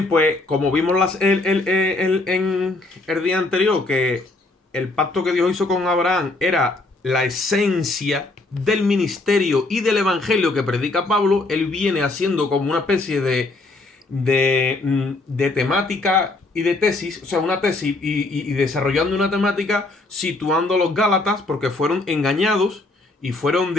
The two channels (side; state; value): right; quieter; 3.1 dB